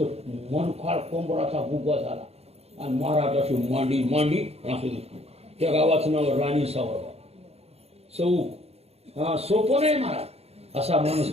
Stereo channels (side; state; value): left; late; 0.30 ms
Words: मनखाळ कोंबडाचा बुगा झाला आणि महाराजाची मांडी मांडी असं दिसतो. त्या गावाचं नाव राणी सावरगाव चौक. हा सोपं नाही महाराज. असा माणूस